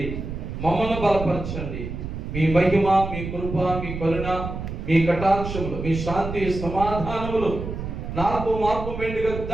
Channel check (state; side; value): noise; right; rumble, 7 dB below the sound